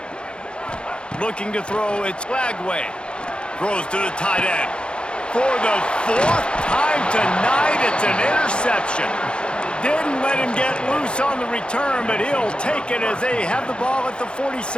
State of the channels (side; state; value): right; late; 0.054 ms